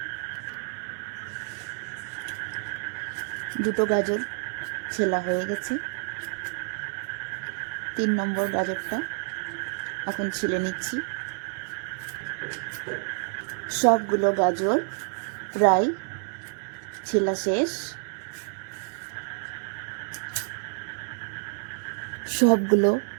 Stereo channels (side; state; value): left; silent; digital silence